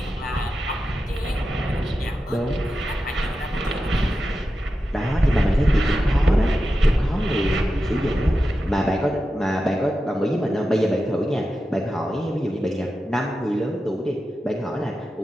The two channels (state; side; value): normal; both; correlation 0.91